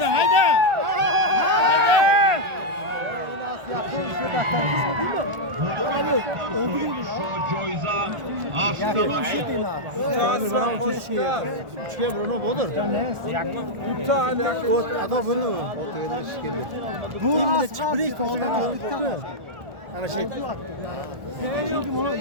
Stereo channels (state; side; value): late; left; 1.4 ms